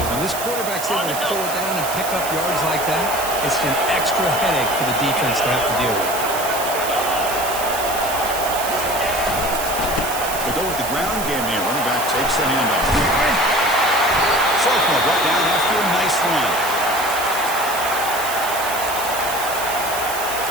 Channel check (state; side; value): noise; right; hiss, 7 dB below the sound